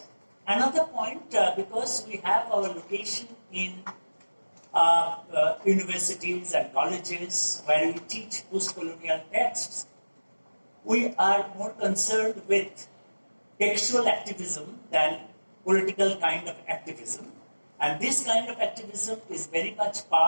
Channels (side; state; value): both; inverted; correlation -1.00